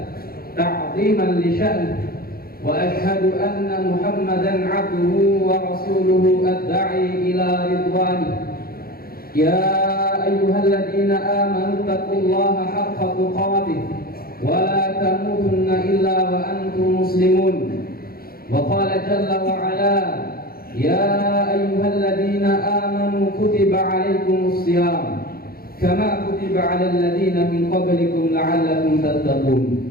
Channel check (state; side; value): late; right; 0.44 ms